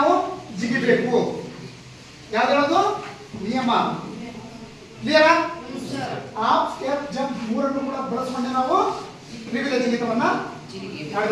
ಜಿಗಿಬೇಕು. ಯಾವ್ದು ನಿಯಮ? ಕ್ಲಿಯರಾ? ಹಾಫ್ ಸ್ಟೆಪ್ ಜಂಪ್ ಮೂರನ್ನು ಕೂಡ ಬಳಸಿಕೊಂಡೆ ನಾವು ತ್ರಿವಿಧ ಜಿಗಿತವನ್ನ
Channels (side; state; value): both; identical; correlation 1.00